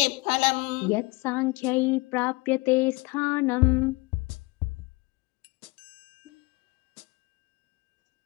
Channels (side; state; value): right; quieter; 25.3 dB